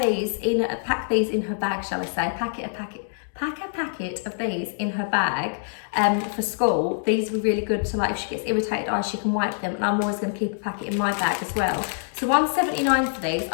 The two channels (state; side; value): silent; right; 62 dB below the other